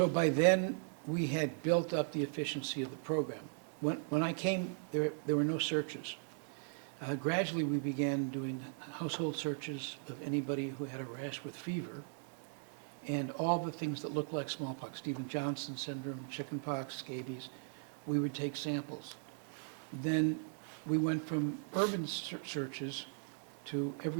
by then, we had built up the efficiency of the program. When I came, there were no searches. Gradually, we began doing household searches of anybody who had a rash with fever and all the things that look like smallpox, Stevens-Johnson syndrome, chickenpox, scabies. We would take samples. Then we went from urban searches to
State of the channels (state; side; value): silent; left; digital silence